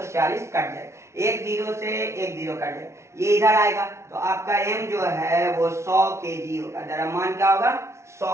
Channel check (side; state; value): left; late; 0.13 ms